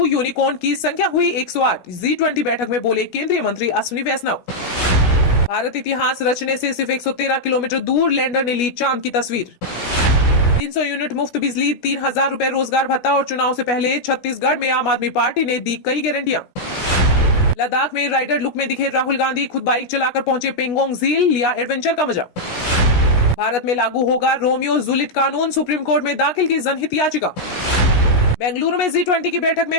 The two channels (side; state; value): right; late; 16 ms